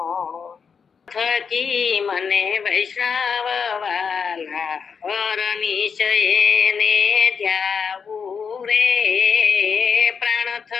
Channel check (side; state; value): right; quieter; 6.2 dB